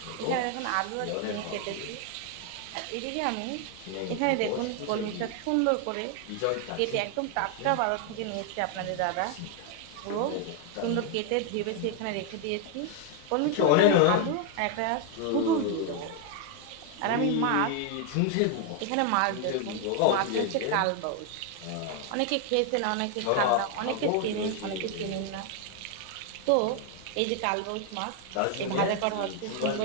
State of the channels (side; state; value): both; different; correlation 0.00